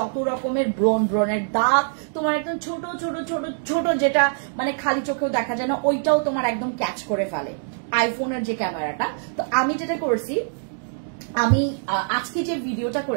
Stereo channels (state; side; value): silent; left; digital silence